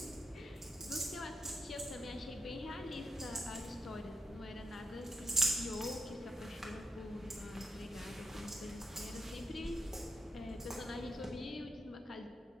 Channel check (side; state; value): both; normal; correlation 0.82